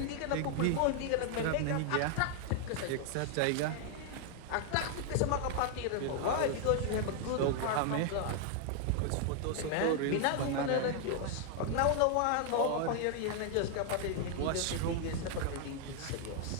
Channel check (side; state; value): both; different; correlation 0.00